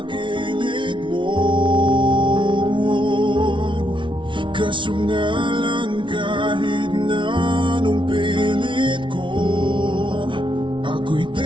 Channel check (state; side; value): late; left; 0.24 ms